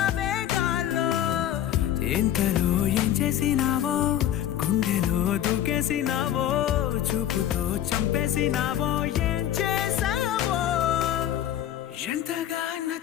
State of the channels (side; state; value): right; quieter; 11.3 dB